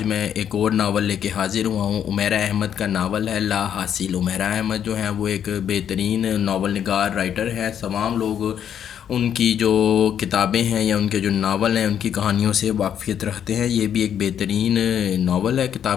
میں ایک اور ناول لے کے حاضر ہوا ہوں۔ عمیرہ احمد کا ناول ہے لا حاصل۔ عمیرہ احمد جو ہیں وہ ایک بہترین ناول نگار رائٹر ہے۔ تمام لوگ ان کی جو کتابیں ہیں یا ان کے جو ناول ہیں ان کی کہانیوں سے واقفیت رکھتے ہیں۔ یہ بھی ایک بہترین ناول ہے۔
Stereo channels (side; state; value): right; quieter; 9.1 dB